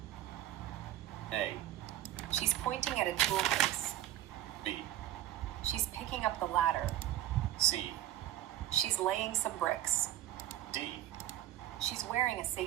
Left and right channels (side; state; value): left; quieter; 13.2 dB